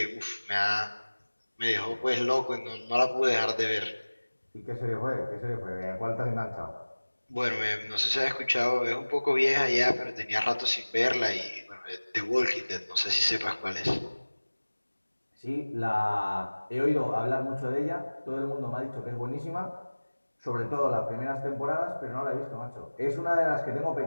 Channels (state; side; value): inverted; both; correlation -1.00